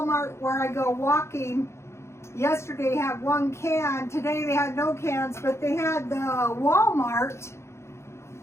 where I go walking yesterday had one can. Today they had no cans, but they had the Walmart,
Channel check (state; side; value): late; right; 0.13 ms